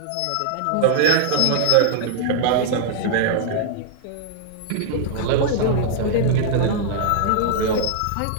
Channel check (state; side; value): different; both; correlation -0.01